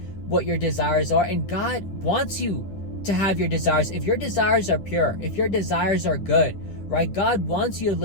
what your desires are, and God wants you to have your desires. If your desires are pure, if your desires are good, right? God wants you to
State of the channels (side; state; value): right; late; 9.9 ms